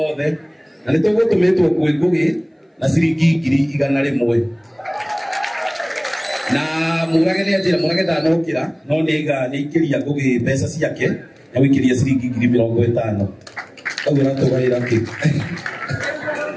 othe na nĩ tũgũtũmĩtwo kwĩ Ngũgĩ na ciringi 100 na murage ni ajira murage ndanokira no niga nikiria Ngũgĩ mbeca ciake na wikiria ciringi 50,000 koguo natugaira ki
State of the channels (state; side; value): identical; both; correlation 1.00